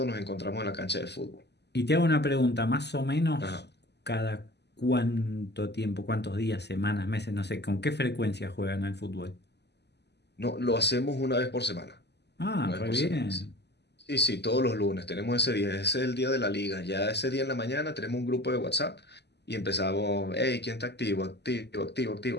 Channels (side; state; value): right; late; 0.50 ms